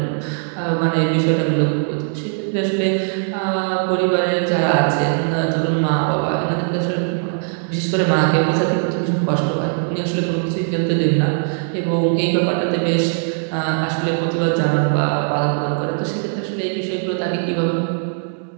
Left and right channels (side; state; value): left; silent; 66 dB below the other